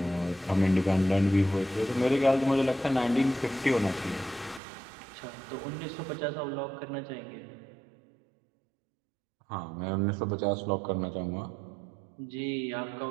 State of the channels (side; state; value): left; drops out; at 4.6 s